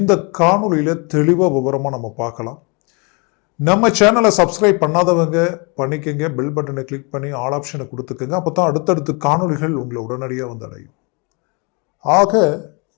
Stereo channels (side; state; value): right; quieter; 31.7 dB